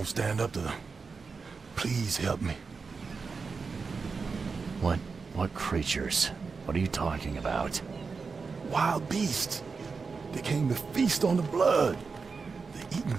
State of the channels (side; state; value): left; quieter; 4.8 dB